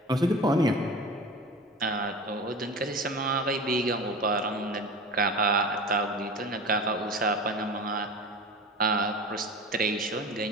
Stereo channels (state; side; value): normal; both; correlation 0.33